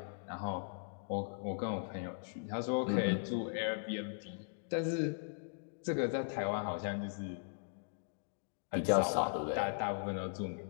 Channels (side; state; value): right; silent; digital silence